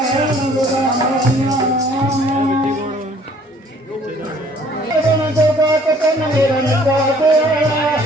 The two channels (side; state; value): both; normal; correlation 0.57